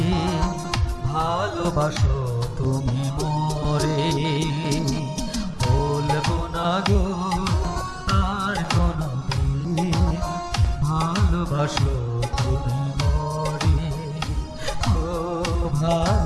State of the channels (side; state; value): both; identical; correlation 1.00